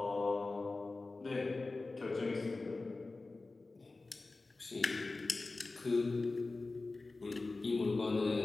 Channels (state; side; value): quieter; right; 3.5 dB